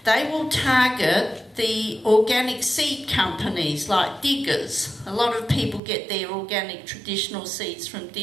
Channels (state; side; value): drops out; left; at 5.8 s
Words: they will target the organic seed companies like Diggers. A lot of people get their organic traditional seeds from